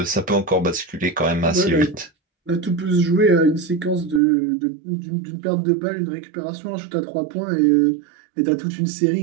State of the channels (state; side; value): drops out; left; at 4.2 s